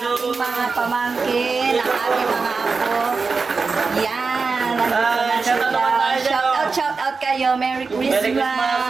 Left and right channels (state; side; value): quieter; left; 4.5 dB